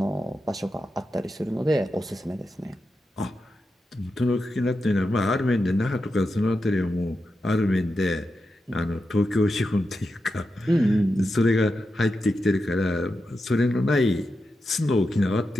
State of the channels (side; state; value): both; normal; correlation 0.88